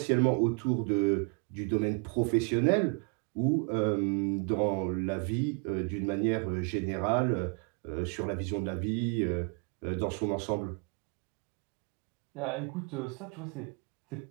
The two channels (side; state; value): left; quieter; 37.3 dB